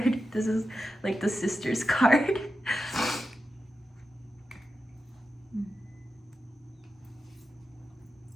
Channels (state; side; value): normal; both; correlation 0.90